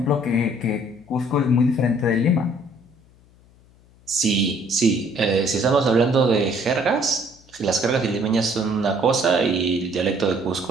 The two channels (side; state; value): left; noise; hum, 29 dB below the sound